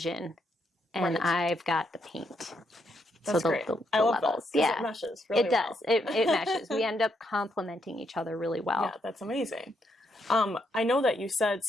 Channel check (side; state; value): both; normal; correlation 0.78